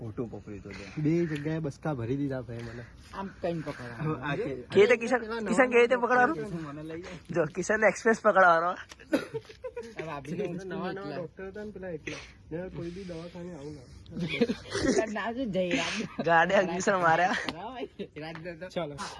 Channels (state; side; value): identical; both; correlation 1.00